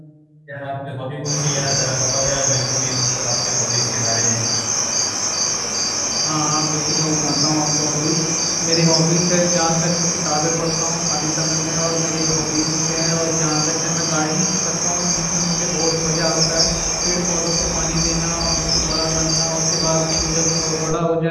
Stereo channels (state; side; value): identical; both; correlation 1.00